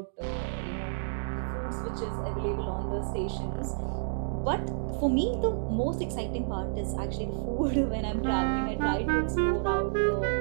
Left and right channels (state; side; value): silent; left; digital silence